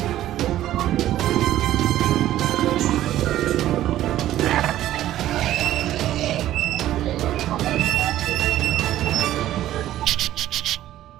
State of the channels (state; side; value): quieter; left; 13.4 dB